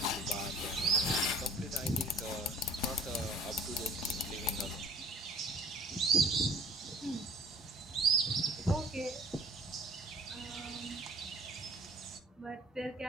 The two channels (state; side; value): normal; both; correlation 0.51